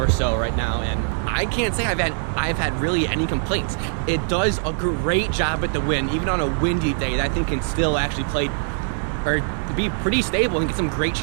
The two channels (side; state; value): left; silent; 64 dB below the other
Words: so right now, and I can't say I've had really any complaints. It does a great job at the wind. Even on a windy day, that thing can still actually play or be pretty stable and get some great